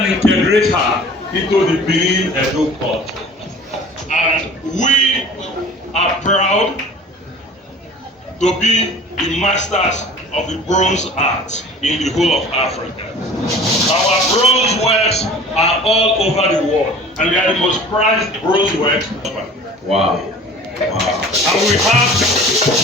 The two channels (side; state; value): both; normal; correlation 0.44